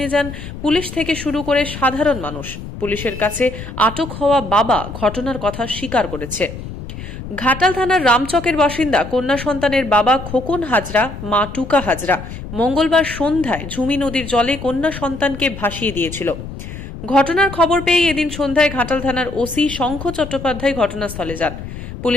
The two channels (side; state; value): left; noise; rumble, 10 dB below the sound